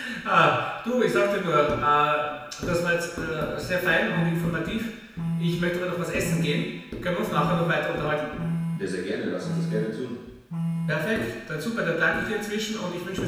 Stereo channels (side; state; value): both; identical; correlation 1.00